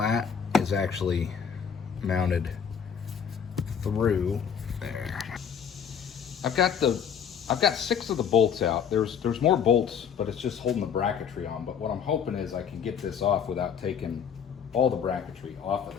is actually mounted through there. I've got 6 of the bolts out. There's more bolts, but it's just holding the bracketry on. But what I'm hoping is I can get this off without taking all the bracketry off of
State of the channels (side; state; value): right; quieter; 7.5 dB